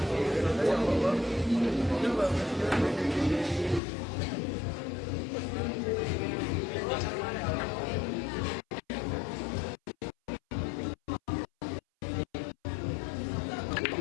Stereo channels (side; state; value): right; drops out; at 3.8 s